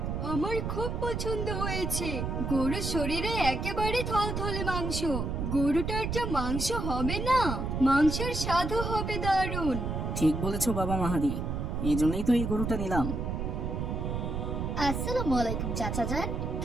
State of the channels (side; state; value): right; noise; rumble, 2 dB below the sound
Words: আমার খুব পছন্দ হয়েছে। গরুর শরীরে একেবারে থলথলে মাংস। গরুটার যা মাংস হবে না, মাংসের স্বাদও হবে দারুণ। ঠিক বলেছো বাবা মাহাদি, এই জন্যই তো এই গরুটা নিলাম। আসসালামু আলাইকুম চাচা যান,